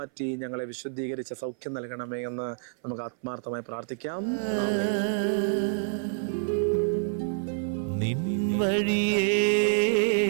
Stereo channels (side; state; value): left; silent; 58 dB below the other